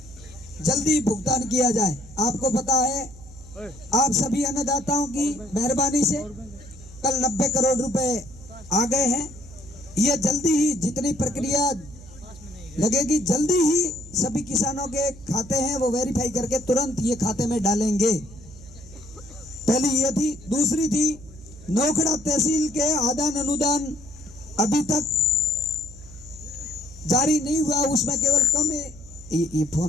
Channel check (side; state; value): right; noise; hum, 18 dB below the sound